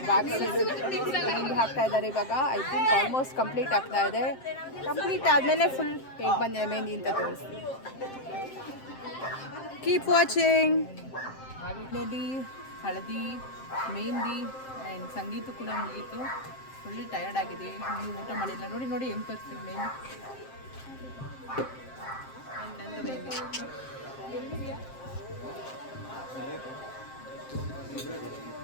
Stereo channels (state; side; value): late; right; 7.6 ms